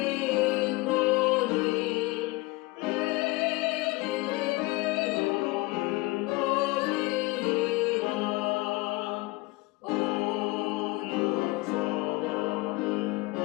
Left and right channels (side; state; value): right; quieter; 22.1 dB